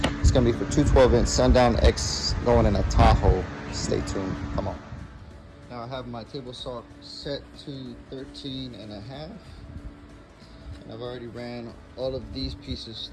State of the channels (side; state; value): both; identical; correlation 1.00